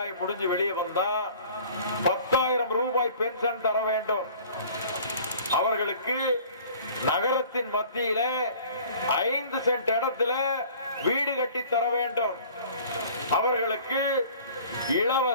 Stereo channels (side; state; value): both; inverted; correlation -0.48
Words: முடிஞ்சு வெளியே வந்தா 10,000 ரூபாய் பென்ஷன் தர வேண்டும். அவர்களுக்கு நகரத்தின் மத்தியில 5 சென்ட் இடத்துல வீடு கட்டி தர வேண்டும். அவர்களுக்கு